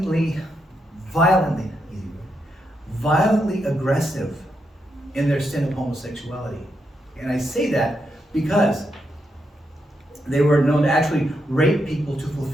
aggressive in their sin of homosexuality. And I say that because they were known to actually rape people to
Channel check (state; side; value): normal; both; correlation 0.82